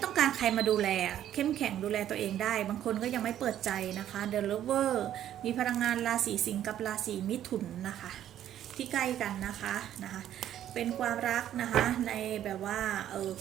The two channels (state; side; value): quieter; left; 11.3 dB